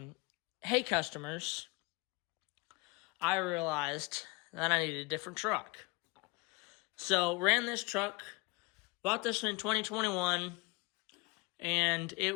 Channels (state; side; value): quieter; right; 26.3 dB